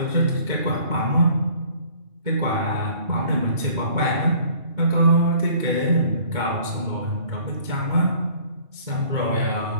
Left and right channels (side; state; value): left; late; 2.2 ms